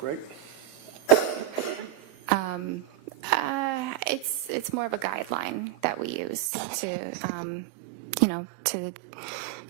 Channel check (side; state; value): left; drops out; at 6.5 s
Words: right? It's more of a guideline that we use to, to